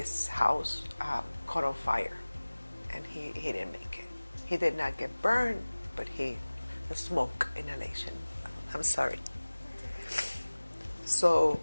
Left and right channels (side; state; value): both; inverted; correlation -1.00